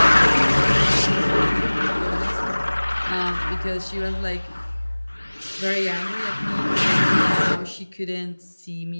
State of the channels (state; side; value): inverted; both; correlation -1.00